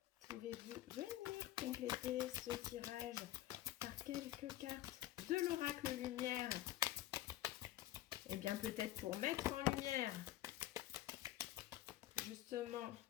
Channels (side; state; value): right; quieter; 14.4 dB